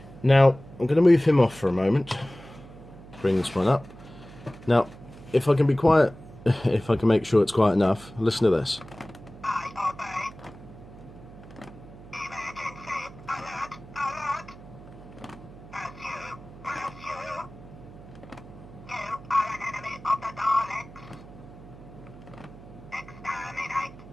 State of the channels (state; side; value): noise; right; hum, 18 dB below the sound